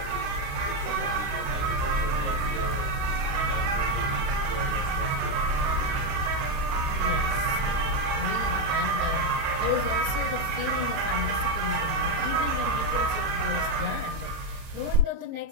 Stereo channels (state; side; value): late; left; 31 ms